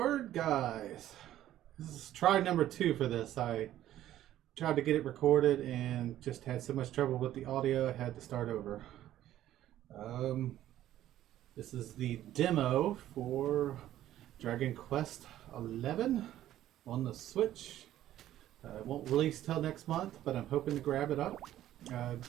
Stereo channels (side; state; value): left; quieter; 12.9 dB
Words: guys. This is try number 2 for this. I tried to get it recorded and just had so much trouble with the audio, I had to start over. This is the demo for Dragon Quest XI on the Switch. It won't release till next month, but I'm hoping to grab it up.